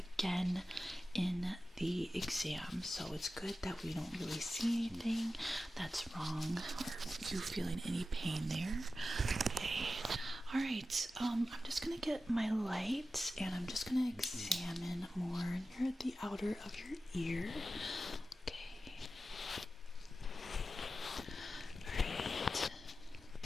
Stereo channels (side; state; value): both; normal; correlation 0.93